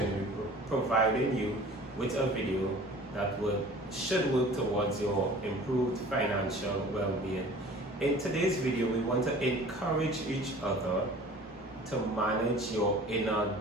to be providing you with a video that should work towards your improved financial well-being. In today's video, we want to encourage each other to manage your inner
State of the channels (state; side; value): normal; both; correlation 0.45